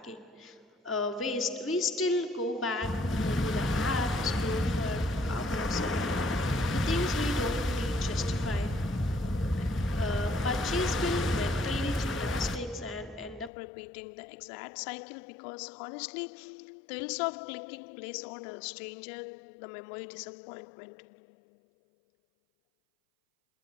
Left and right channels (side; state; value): right; drops out; at 13.5 s